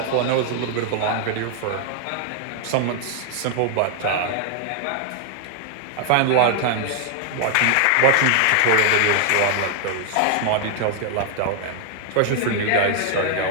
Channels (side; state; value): both; different; correlation 0.00